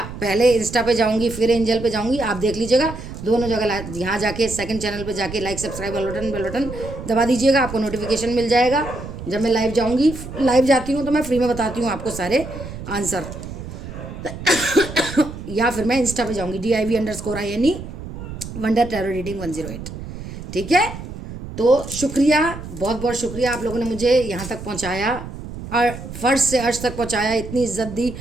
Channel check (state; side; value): noise; right; rumble, 10 dB below the sound